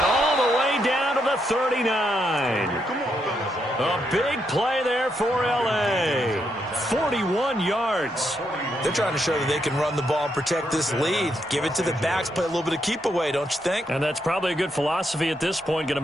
all the way down to the 39. A big play there for L.A. 41 yards. They're trying to show that they can run the ball and protect this lead. Give it to the backs, play a little bit of keep away, don't you think? And that's probably a good philosophy at this point, going to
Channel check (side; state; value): both; normal; correlation 0.79